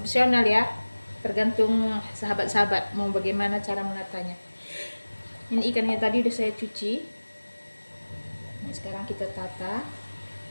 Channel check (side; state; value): both; inverted; correlation -1.00